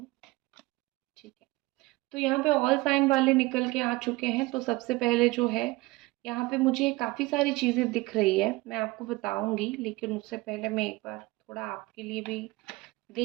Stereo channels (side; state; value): left; quieter; 21.7 dB